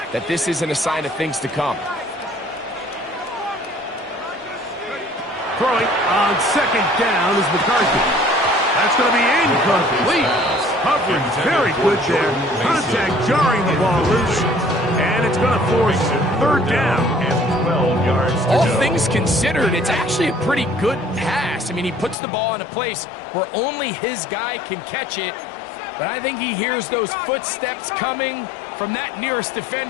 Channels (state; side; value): drops out; right; at 22.2 s